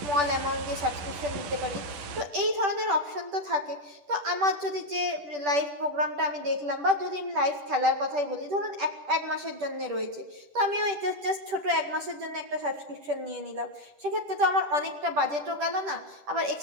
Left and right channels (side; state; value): left; late; 10 ms